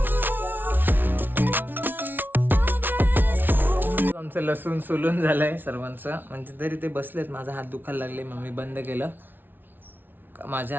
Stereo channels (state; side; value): late; left; 0.094 ms